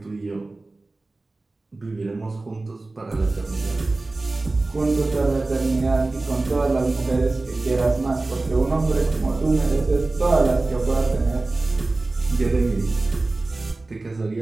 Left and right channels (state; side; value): quieter; left; 3.2 dB